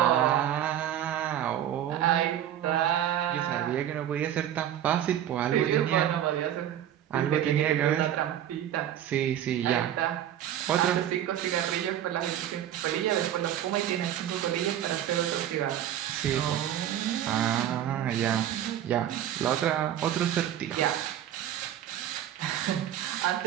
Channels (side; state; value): left; quieter; 11.0 dB